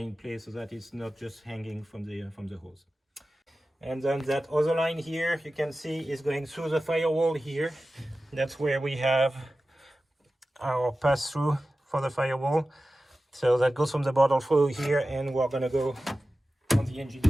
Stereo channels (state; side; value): normal; both; correlation 0.95